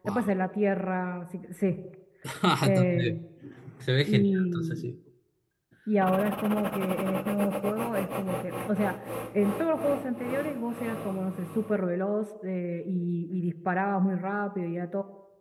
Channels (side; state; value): both; identical; correlation 1.00